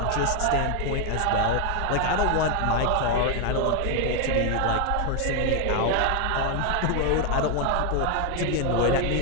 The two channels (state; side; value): different; both; correlation 0.01